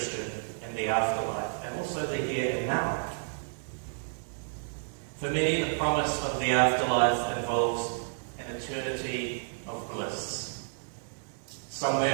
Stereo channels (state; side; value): silent; left; digital silence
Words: in the afterlife, and also the here and now? For many, the promise of the afterlife involves an eternity of bliss,